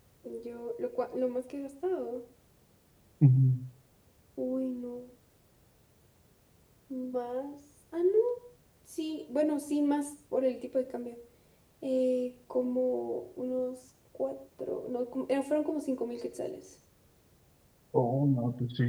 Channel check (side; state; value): both; identical; correlation 1.00